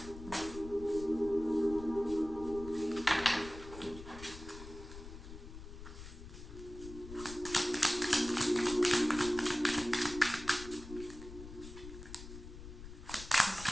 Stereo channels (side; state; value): left; noise; rumble, 13 dB below the sound